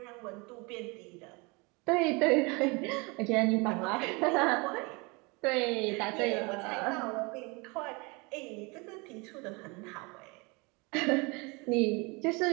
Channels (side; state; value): left; quieter; 28.0 dB